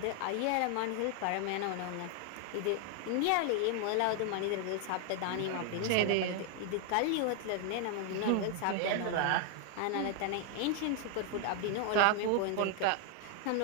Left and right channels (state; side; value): different; both; correlation 0.00